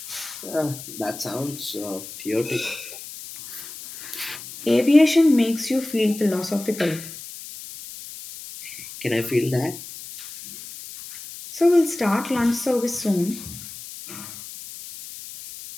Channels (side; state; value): left; noise; hiss, 13 dB below the sound